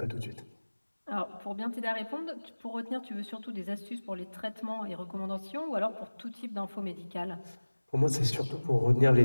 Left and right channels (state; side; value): inverted; both; correlation -1.00